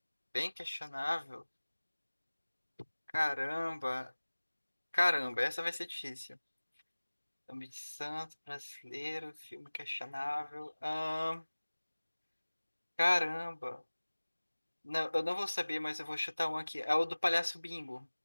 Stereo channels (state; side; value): inverted; both; correlation -1.00